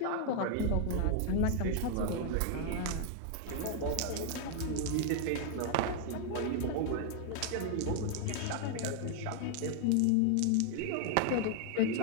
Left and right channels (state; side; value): different; both; correlation 0.00